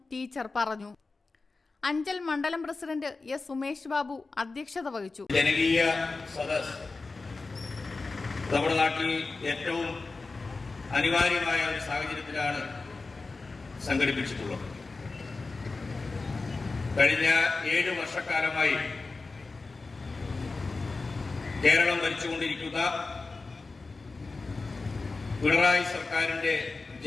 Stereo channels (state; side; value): quieter; right; 3.8 dB